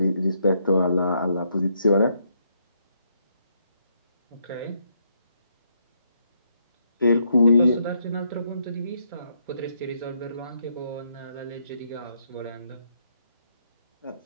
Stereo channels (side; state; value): both; inverted; correlation -0.75